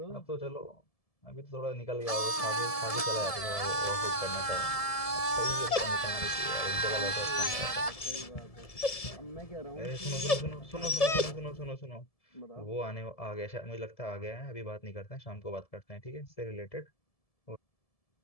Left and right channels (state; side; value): late; right; 1.7 ms